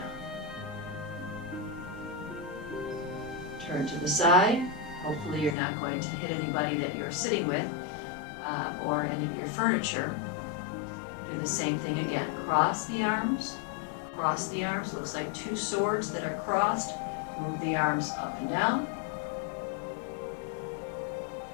Turn to the side. Hopefully you're not going to hit anybody that you're sitting with or any of your furniture. Do the same thing again. Cross the arms. Cross the arms. Looks like two swords that are crossed. Move the arms up and down.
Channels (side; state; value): right; drops out; at 5.6 s